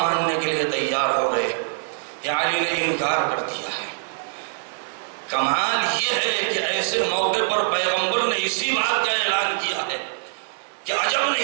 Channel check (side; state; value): left; silent; 56 dB below the other